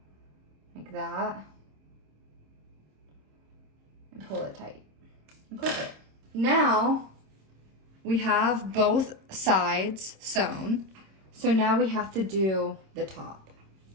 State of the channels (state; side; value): late; left; 26 ms